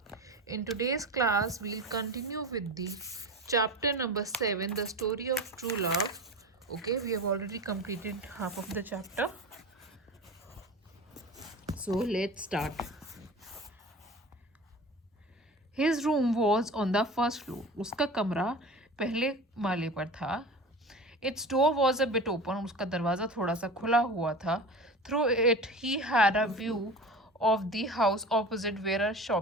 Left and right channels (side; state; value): both; normal; correlation 0.33